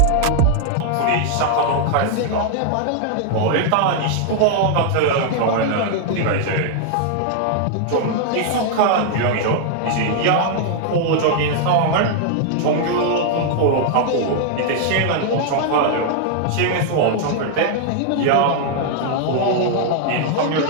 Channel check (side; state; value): both; different; correlation 0.00